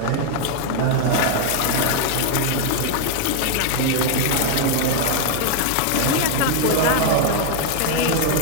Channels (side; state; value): both; different; correlation 0.00